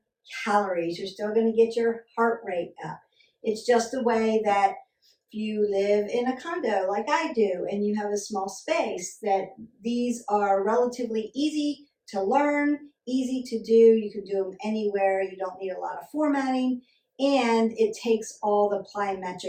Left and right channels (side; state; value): both; identical; correlation 1.00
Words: calories. You're still going to get your heart rate up. It's just a way that if you live in a condo like I do and you have a small space, that these are relatively easy to learn, easy to do. You can do them anywhere. You don't need a lot of formatting, and it takes all the